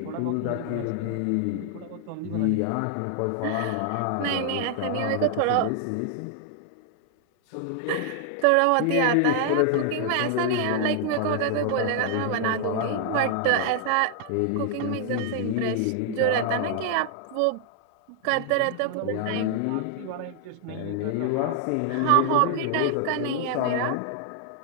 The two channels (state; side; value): different; both; correlation 0.00